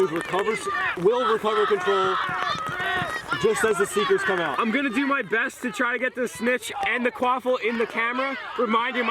will recover control just as the Seekers come out. I'm gonna do my best to try to get the snitch and the quaffle in the camera. Reminder,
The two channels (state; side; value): identical; both; correlation 1.00